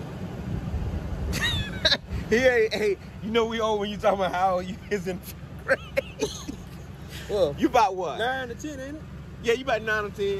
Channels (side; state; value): both; identical; correlation 1.00